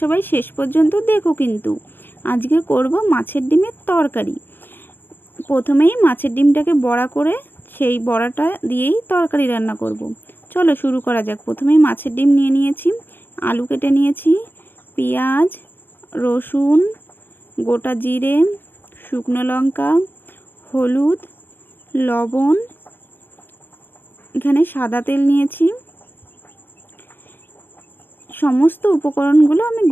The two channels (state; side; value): late; right; 0.092 ms